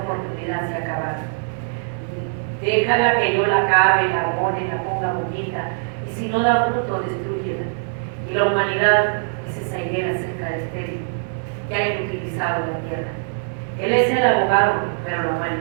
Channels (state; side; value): silent; left; 57 dB below the other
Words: se acaba. Déjala que yo la acabe, la abone, la ponga bonita. Y si no da fruto, destrúyela. Y la humanidad es esa higuera seca de estéril que ha inutilizado la tierra. Él es el abogado, pero la